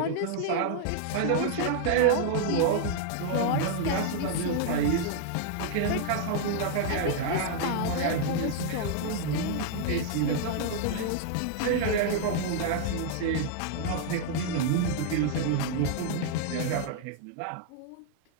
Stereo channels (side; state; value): both; different; correlation -0.01